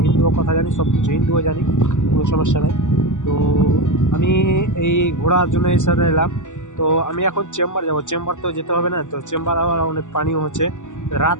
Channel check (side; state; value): right; late; 0.85 ms